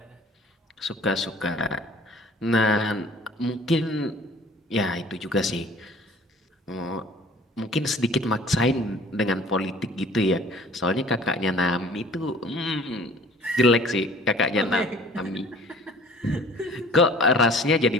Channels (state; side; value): normal; both; correlation 0.50